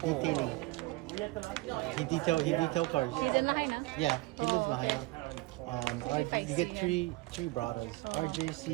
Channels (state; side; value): quieter; left; 21.2 dB